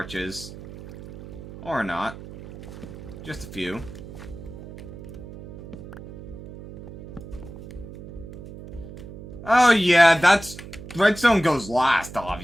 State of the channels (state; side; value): noise; right; hum, 14 dB below the sound